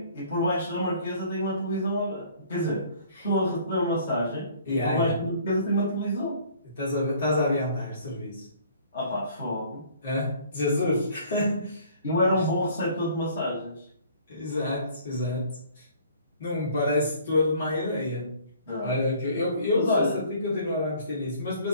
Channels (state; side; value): inverted; both; correlation -0.54